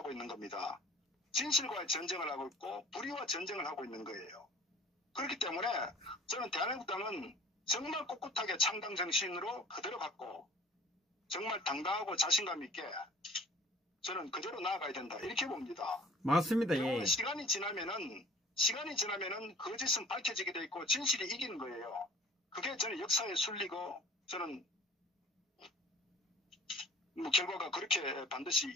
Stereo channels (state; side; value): normal; both; correlation 0.49